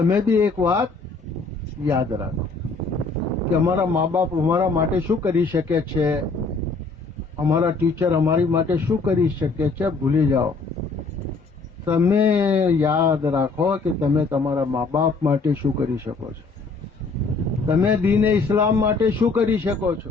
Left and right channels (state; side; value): quieter; right; 3.9 dB